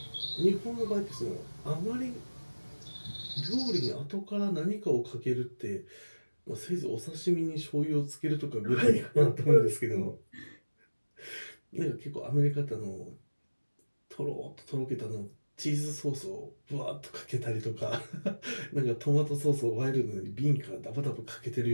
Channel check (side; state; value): both; inverted; correlation -1.00